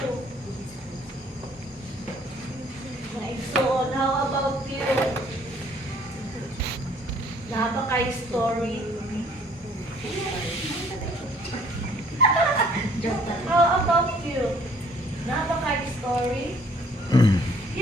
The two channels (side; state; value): both; normal; correlation 0.59